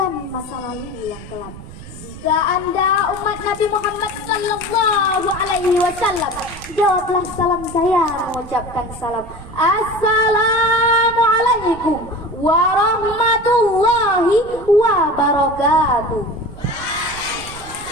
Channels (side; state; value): right; noise; rumble, 16 dB below the sound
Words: masa lalu yang kelam. Jika Anda umat Nabi Muhammad sallallahu alaihi wasallam, jawablah salam saya mengucapkan salam. Assalamualaikum warahmatullahi wabarakatuh.